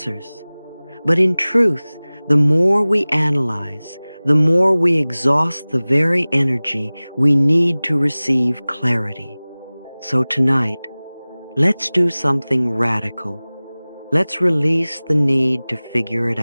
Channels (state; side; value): inverted; both; correlation -0.99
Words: But in truth, the more we analyze, the more we exhaust the very energy we need to receive clarity. So tonight, let's do something radical. Let's release the need to figure it